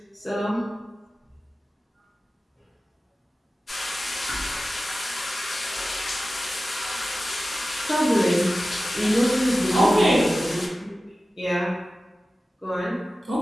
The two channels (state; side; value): normal; both; correlation 0.95